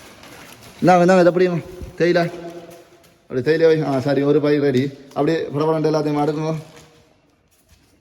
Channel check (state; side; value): identical; both; correlation 1.00